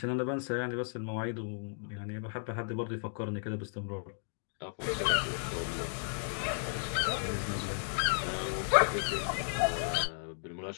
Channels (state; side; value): silent; right; digital silence